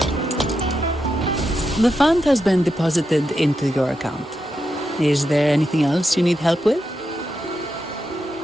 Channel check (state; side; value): normal; both; correlation 0.86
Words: The fund has been deposited into your account. Is there anything else you need help with?